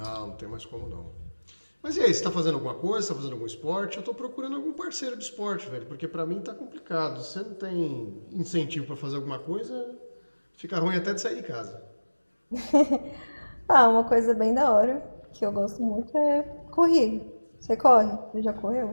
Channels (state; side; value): inverted; both; correlation -1.00